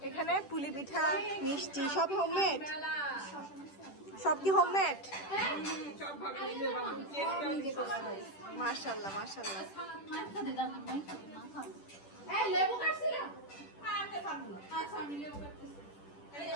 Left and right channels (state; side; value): late; right; 10 ms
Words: এখানে পুলি পিঠা, মিষ্টি, সব হোমমেড। সব কি হোমমেড? মাশাআল্লাহ মাশাআল্লাহ।